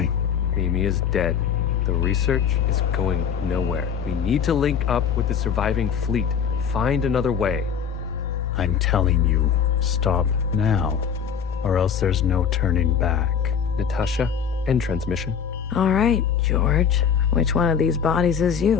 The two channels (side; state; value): right; quieter; 7.5 dB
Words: Mimi is dead. The research is going nowhere. We need to link up with the surviving fleet. Find another way. I'm telling you, stop now, or else there's no turning back. Natasha, end transmission. All right, George. Which one of these bodies is